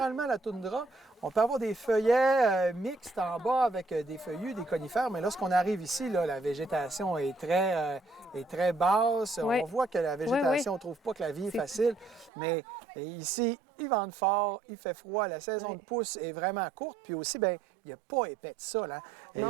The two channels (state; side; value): drops out; left; at 12.3 s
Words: la toundra. On peut avoir des feuillets mixtes en bas avec des feuillus, des conifères, mais lorsqu'on arrive ici, là, la végétation est très basse. On voit que la végétation, on ne trouve pas que la vie est facile, mais ici, il vente fort, il fait froid, la saison de pousse est vraiment courte, puis aussi, bien, il n'y a pas épais de sol. Hein?